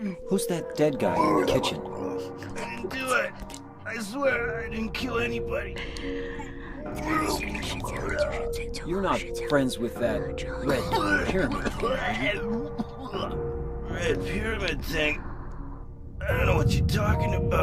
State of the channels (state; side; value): identical; both; correlation 1.00